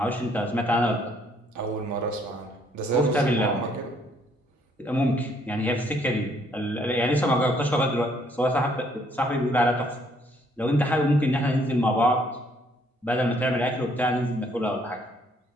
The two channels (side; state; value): both; normal; correlation 0.66